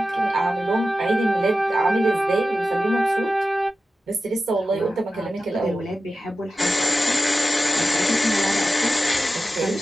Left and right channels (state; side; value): normal; both; correlation 0.93